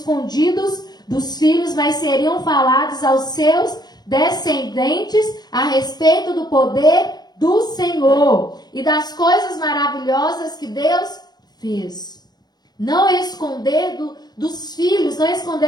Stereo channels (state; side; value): late; right; 0.19 ms